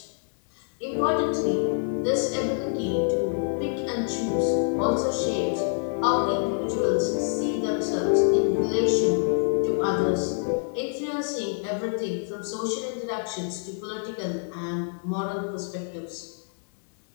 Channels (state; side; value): silent; right; digital silence